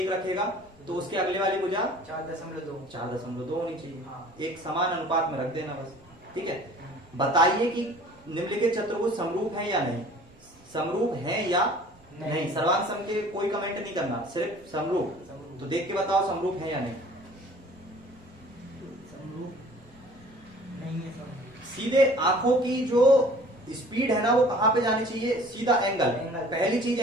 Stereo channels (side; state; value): both; normal; correlation 0.49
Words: रखेगा तो उसके अगले वाली भुजा 4.2। 4.2 होनी चाहिए। हाँ। एक समान अनुपात में रख देना बस। ठीक है, बताइए कि निम्नलिखित चतुर्भुज समरूप है या नहीं। समरूप है या नहीं। सर्वांग सम के कोई कमेंट नहीं करना, सिर्फ समरूप। तो देख के बताओ समरूप है या नहीं। समरूप नहीं है। समरूप सीधे आंखों की जो स्पीड है ना वो कहां पे जानी चाहिए, सीधा एंगल। पहली चीज